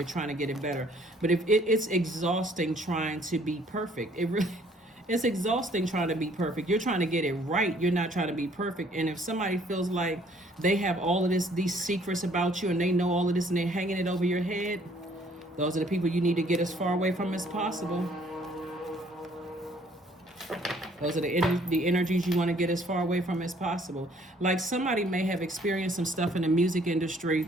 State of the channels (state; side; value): normal; both; correlation 0.61